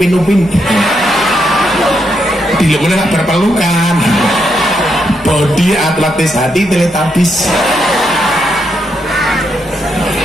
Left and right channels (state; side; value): normal; both; correlation 0.80